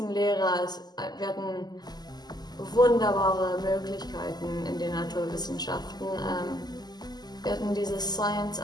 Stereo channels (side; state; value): right; late; 0.20 ms